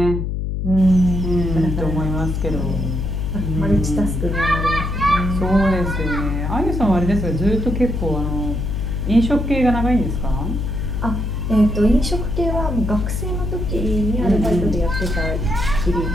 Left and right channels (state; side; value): noise; left; hum, 2 dB below the sound